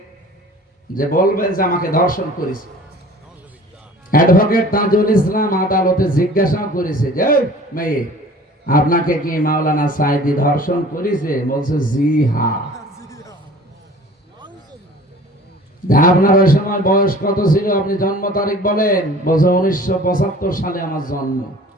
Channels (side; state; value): both; normal; correlation 0.46